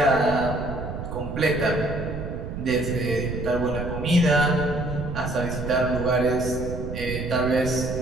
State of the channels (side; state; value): right; noise; rumble, 7 dB below the sound